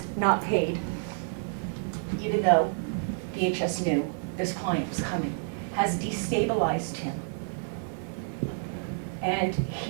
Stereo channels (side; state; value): left; silent; digital silence